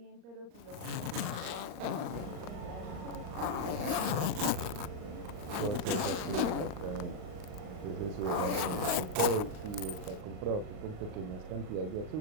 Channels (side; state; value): left; late; 39 ms